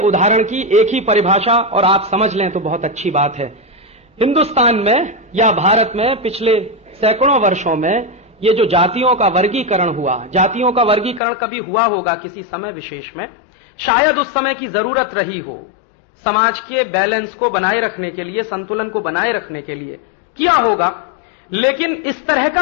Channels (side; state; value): right; drops out; at 11.2 s